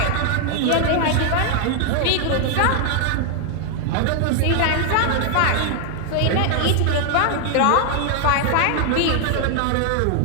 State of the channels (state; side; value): different; both; correlation 0.00